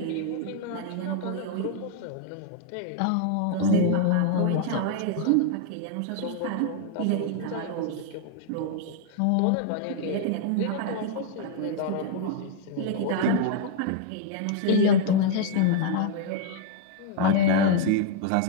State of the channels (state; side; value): different; both; correlation 0.00